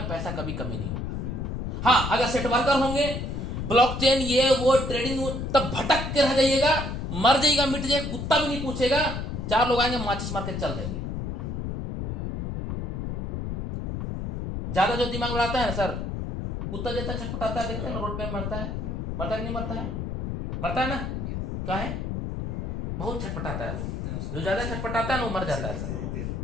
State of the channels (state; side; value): noise; left; rumble, 4 dB below the sound